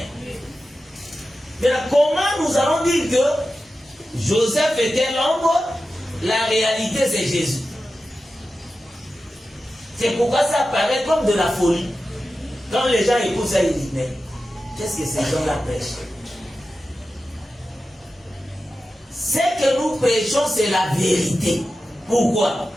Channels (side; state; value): both; normal; correlation 0.93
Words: Mais là, comment nous allons dire que Joseph était l'ombre? La réalité, c'est Jésus. C'est pourquoi ça paraît comme de la folie. Quand les gens écoutent ça, ils disent, mais qu'est-ce que ces gens-là prêchent? Ce que nous prêchons, c'est la vérité. Pourquoi?